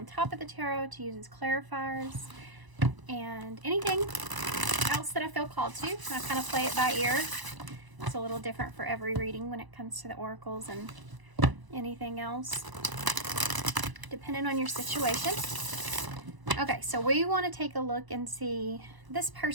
top of the tarot to use as clarifiers, and anything else that I feel called to. I kind of play it by ear. It's a little different for every reading when it comes to the oracles and anything else, depending on your situation. Okay, so we want to take a look and see this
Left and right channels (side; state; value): left; late; 1.0 ms